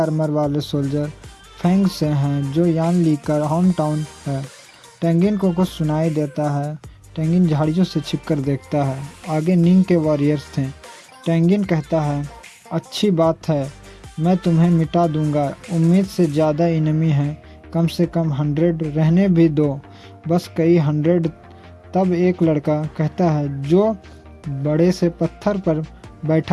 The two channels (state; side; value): identical; both; correlation 1.00